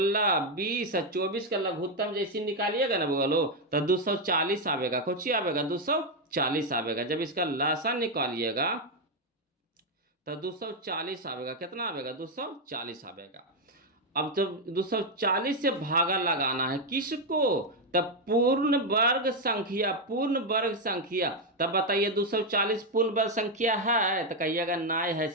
20 और 24 का लघुत्तम जैसी निकालिएगा ना बगलो, तो 240 आवेगा। कौची आवेगा? 240 आवेगा। जब इसका लसन निकालिएगा तो 240 आवेगा। कितना आवेगा? 240 आवेगा। अब जब 240 से भागा लगाना है किसको? तब पूर्ण वर्ग संख्या, पूर्ण वर्ग संख्या। तब बताइए 240 पूर्ण वर्ग संख्या है? तो कहिएगा नहीं है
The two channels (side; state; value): both; normal; correlation 0.04